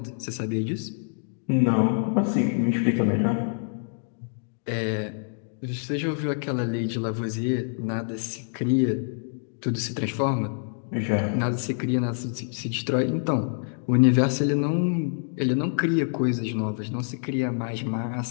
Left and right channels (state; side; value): silent; right; digital silence